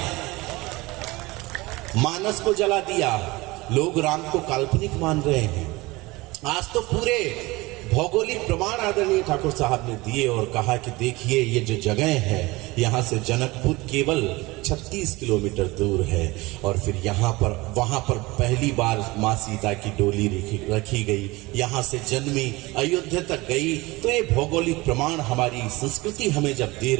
मानस को जला दिया, लोग राम को काल्पनिक मान रहे हैं। आज तो पूरे भौगोलिक प्रमाण आदरणीय ठाकुर साहब ने दिए और कहा कि देखिए ये जो जगह है, यहाँ से जनकपुर केवल 36 किलोमीटर दूर है। और फिर यहाँ पर वहां पर पहली बार माँ सीता की डोली रखी गई, यहाँ से जन्मी, अयोध्या तक गई। तो ये भौगोलिक प्रमाण हमारी संस्कृति हमें जब दे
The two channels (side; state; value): left; quieter; 21.9 dB